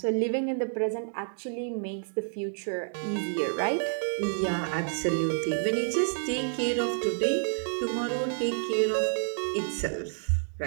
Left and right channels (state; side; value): silent; left; digital silence